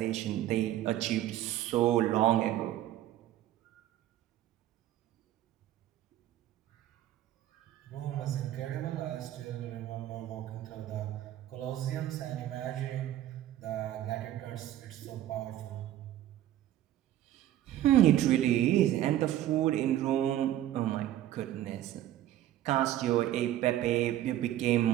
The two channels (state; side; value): quieter; left; 13.0 dB